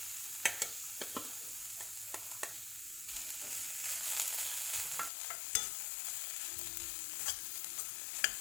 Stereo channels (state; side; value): drops out; right; at 5.1 s